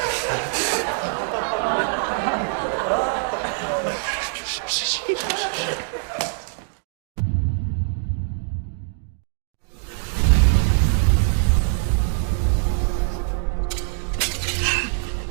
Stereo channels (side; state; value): left; silent; digital silence